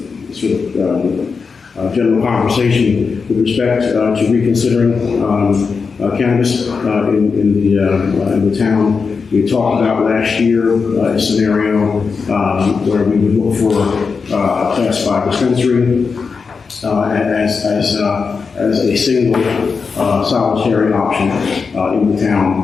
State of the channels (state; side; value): quieter; right; 5.1 dB